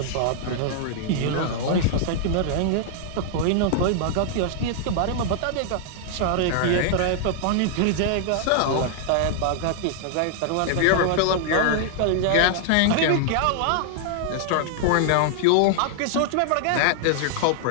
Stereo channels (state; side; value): different; both; correlation -0.01